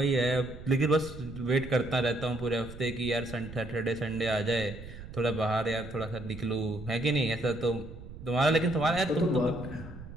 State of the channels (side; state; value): right; noise; rumble, 14 dB below the sound